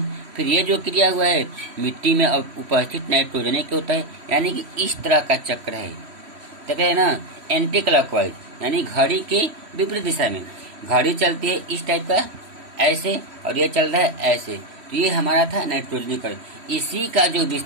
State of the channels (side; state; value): left; late; 3.1 ms